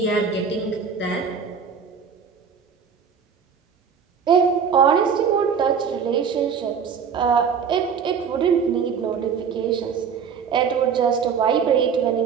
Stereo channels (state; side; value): quieter; left; 6.7 dB